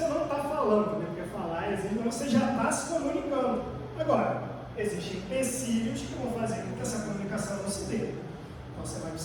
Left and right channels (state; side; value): identical; both; correlation 1.00